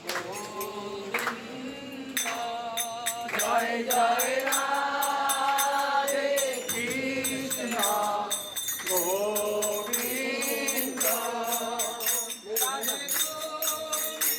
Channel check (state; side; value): identical; both; correlation 1.00